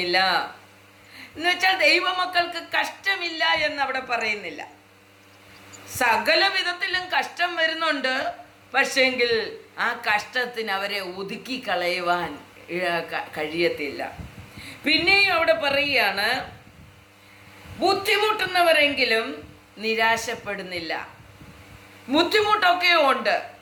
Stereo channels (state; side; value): identical; both; correlation 1.00